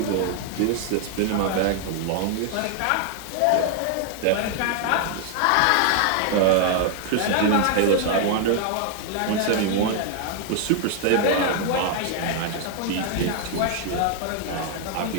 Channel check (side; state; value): both; different; correlation 0.00